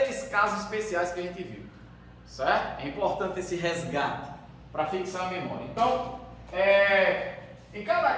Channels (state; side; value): identical; both; correlation 1.00